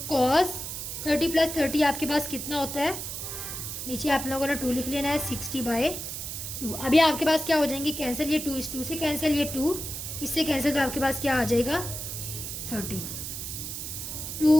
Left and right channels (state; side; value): noise; right; hiss, 6 dB below the sound